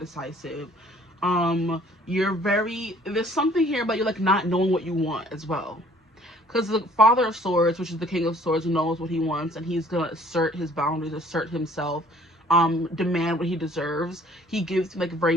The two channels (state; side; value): normal; both; correlation 0.56